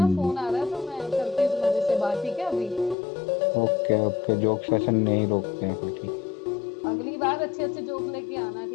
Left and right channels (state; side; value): drops out; right; at 3.0 s